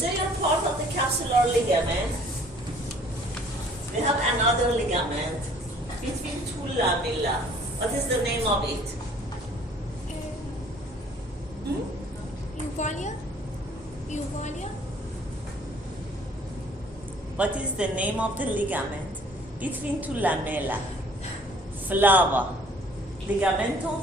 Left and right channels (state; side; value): normal; both; correlation 0.55